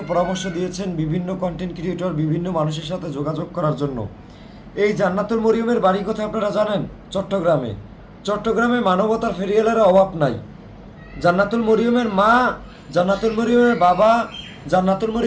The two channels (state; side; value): identical; both; correlation 1.00